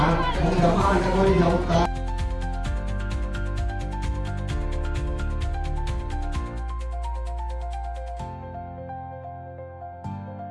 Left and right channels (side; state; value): both; identical; correlation 1.00